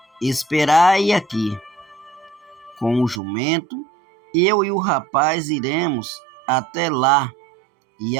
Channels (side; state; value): left; drops out; at 3.2 s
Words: Esperai aqui, com o jumento, eu e o rapaz iremos até lá, e